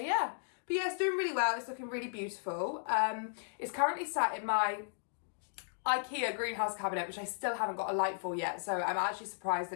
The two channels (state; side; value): silent; right; digital silence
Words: but yeah, it's doing really well. It's looking really beautiful. It's currently sat in my IKEA greenhouse cabinet, which I still haven't got a light for yet. So I'm actually surprised